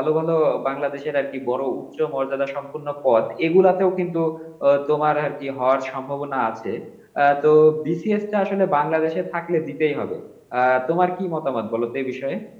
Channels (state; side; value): identical; both; correlation 1.00